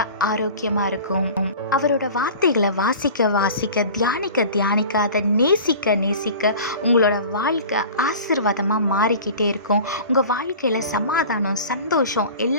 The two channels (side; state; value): both; inverted; correlation -0.39